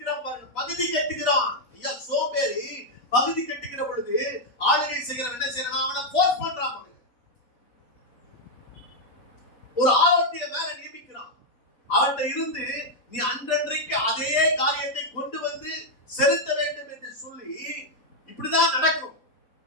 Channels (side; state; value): right; late; 4.1 ms